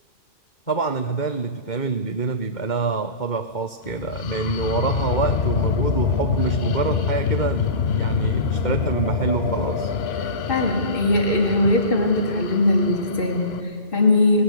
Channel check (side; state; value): right; late; 2.2 ms